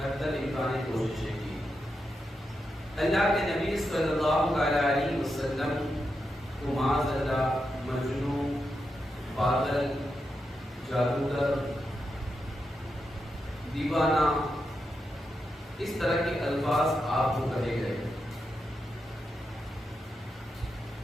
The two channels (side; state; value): both; normal; correlation 0.86